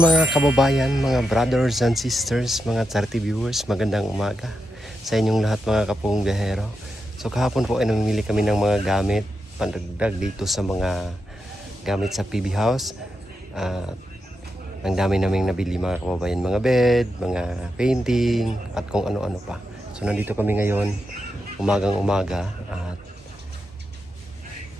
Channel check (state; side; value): normal; both; correlation 0.86